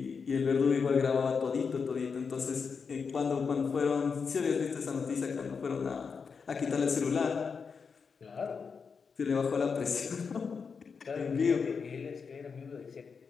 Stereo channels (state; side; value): quieter; right; 5.6 dB